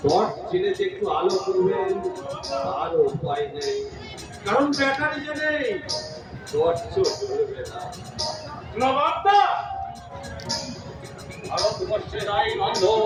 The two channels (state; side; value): identical; both; correlation 1.00